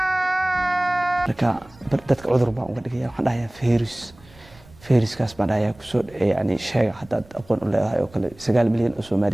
لكن بدت عذر بقى وقد كده حنا هي فيروس كاس بعد هي كسر يعني شيء حتى أقول ولا هاي وكل 9 مليون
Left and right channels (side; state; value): right; noise; rumble, 24 dB below the sound